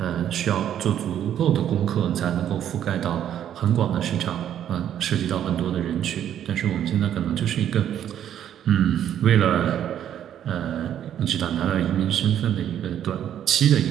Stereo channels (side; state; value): left; quieter; 10.3 dB